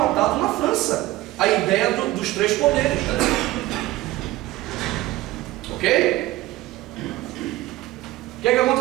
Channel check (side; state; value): left; quieter; 17.0 dB